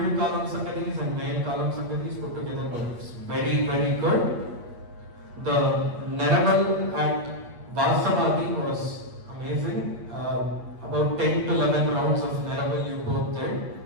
Kalam Sangadis and Mail Kalam Sangadis put together. Was very, very good. The Neraval at Vasavadi was amazing. About 10 to 11 rounds of Neraval you both did.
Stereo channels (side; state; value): left; late; 8.5 ms